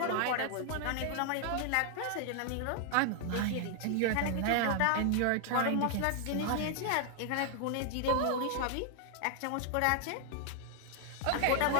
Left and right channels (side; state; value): both; different; correlation 0.00